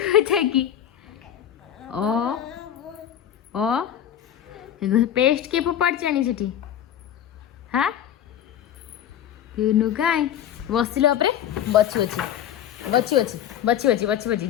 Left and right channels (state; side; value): quieter; right; 10.3 dB